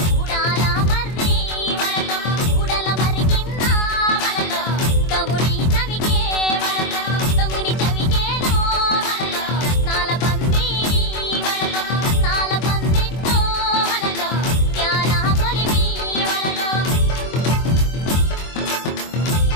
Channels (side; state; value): right; late; 24 ms